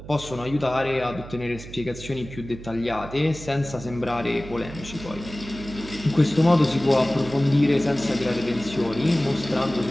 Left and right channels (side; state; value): right; noise; hum, 14 dB below the sound